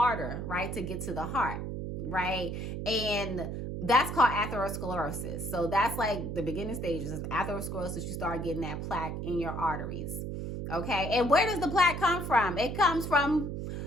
right, to get to the heart, right? And that's called atherosclerosis. So that's like the beginning stages of atherosclerosis. You start getting that plaque in your arteries, okay? And where does the plaque come from? It comes from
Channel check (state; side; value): noise; right; hum, 5 dB below the sound